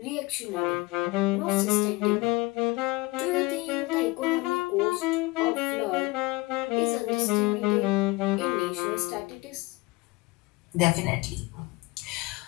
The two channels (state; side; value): quieter; right; 23.2 dB